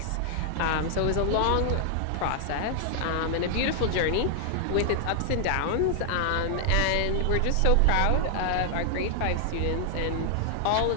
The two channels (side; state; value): both; different; correlation 0.00